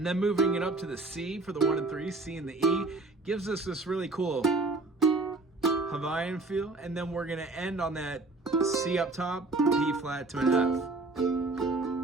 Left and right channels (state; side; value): quieter; left; 3.3 dB